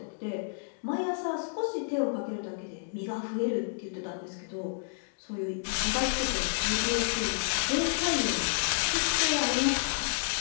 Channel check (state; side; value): silent; right; digital silence